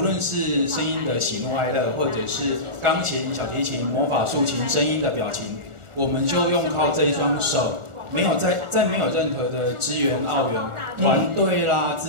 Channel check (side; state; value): left; late; 1.4 ms